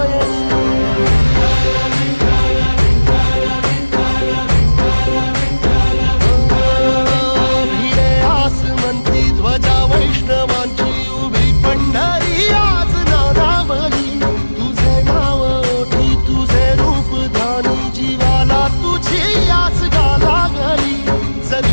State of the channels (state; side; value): inverted; both; correlation -1.00